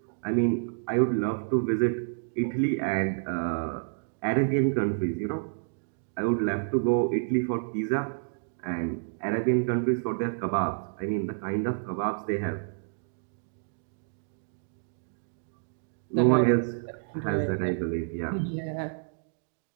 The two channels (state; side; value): silent; left; digital silence